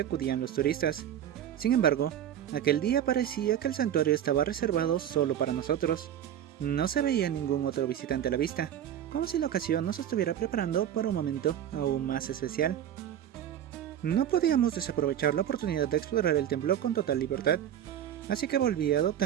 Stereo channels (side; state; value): left; quieter; 10.4 dB